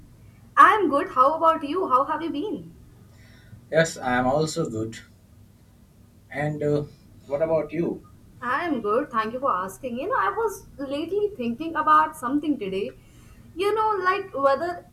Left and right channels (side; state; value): both; identical; correlation 1.00